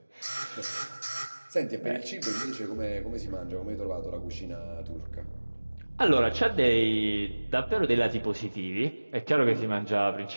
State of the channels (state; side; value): inverted; both; correlation -1.00